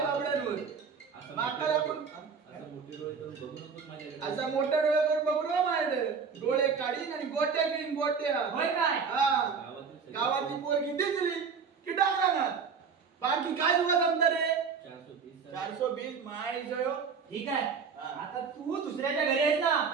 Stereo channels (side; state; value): left; quieter; 5.8 dB